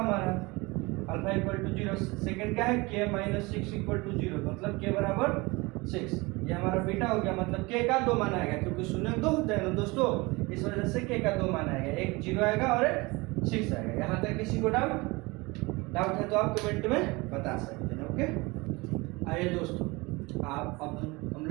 अल्फा इक्वल टू 0। सेकंड क्या है, k माइनस 6 इक्वल टू 0, मतलब k बराबर 6। ये हमारा बीटा हो गया, मतलब k का 2 मान आएगा, क्योंकि शून्य 2 होते हैं ना दोस्तों, इस वजह से k का 2 मान आएगा, एक 0 आएगा और एक 6 आएगा। यहाँ तक किसी को डाउट है तो आप कमेंट में बता सकते हैं, ओके। आइए दोस्तों, आप अब हम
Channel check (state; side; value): quieter; left; 24.2 dB